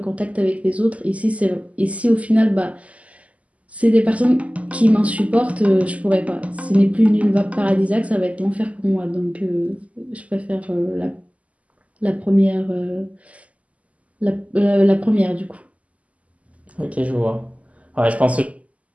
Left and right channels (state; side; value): late; left; 0.069 ms